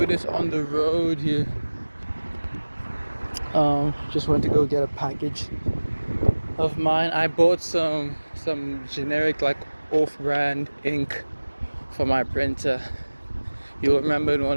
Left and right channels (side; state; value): both; inverted; correlation -1.00